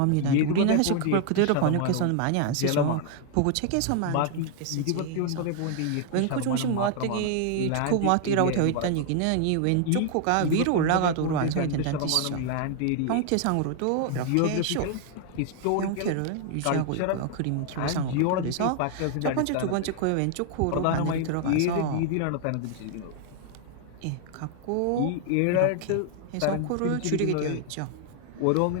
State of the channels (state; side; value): different; both; correlation 0.00